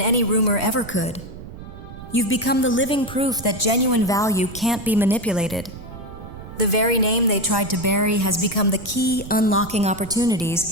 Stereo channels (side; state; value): right; noise; rumble, 14 dB below the sound